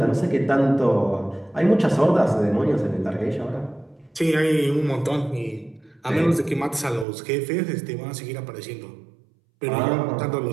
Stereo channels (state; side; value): drops out; left; at 7.1 s